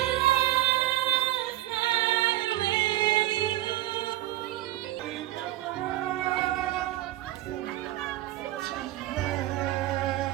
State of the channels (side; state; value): left; quieter; 15.5 dB